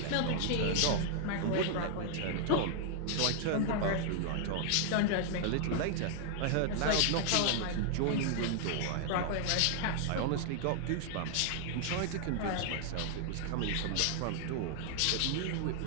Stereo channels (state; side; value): different; both; correlation 0.00